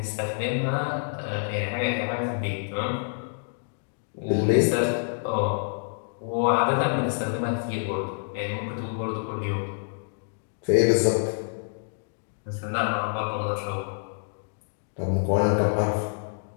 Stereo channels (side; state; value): right; silent; digital silence